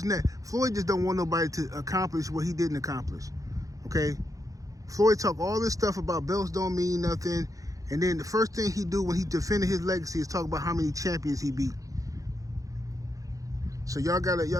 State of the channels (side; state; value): left; late; 0.16 ms